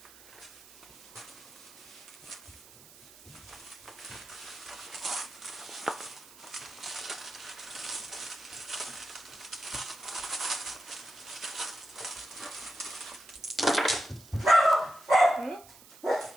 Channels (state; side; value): noise; right; hiss, 20 dB below the sound